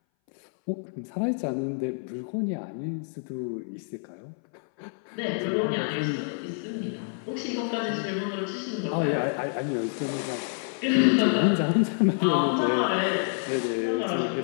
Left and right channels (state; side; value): silent; right; 60 dB below the other